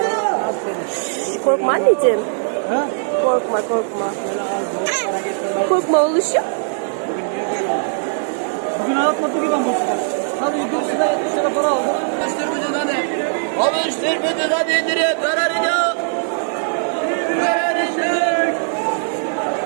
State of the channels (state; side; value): silent; left; digital silence